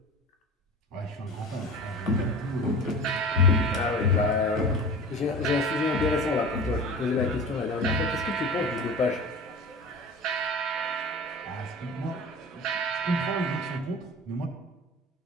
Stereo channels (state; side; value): normal; both; correlation 0.36